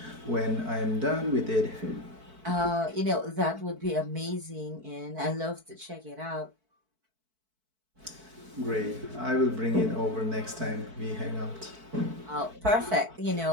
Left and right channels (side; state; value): left; late; 4.6 ms